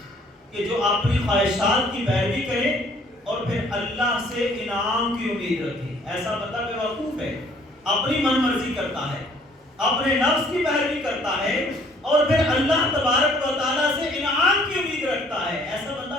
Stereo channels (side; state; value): both; normal; correlation 0.60